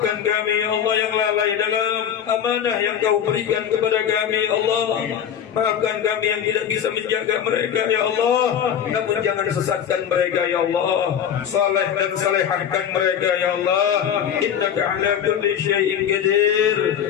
kami ya Allah yang lalai dalam amanah yang kau berikan kepada kami ya Allah. Maafkan kami yang tidak bisa menjaga mereka ya Allah. Namun jangan sesatkan mereka ya Allah. Saleh dan salehahkan mereka ya Allah. Innaka ala kulli syai'in qadir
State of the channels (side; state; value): right; quieter; 8.9 dB